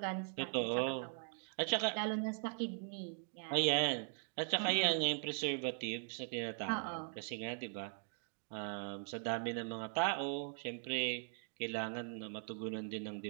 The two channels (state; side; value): silent; left; 51 dB below the other